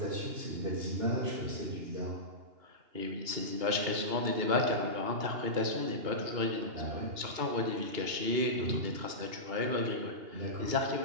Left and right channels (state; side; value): late; left; 2.8 ms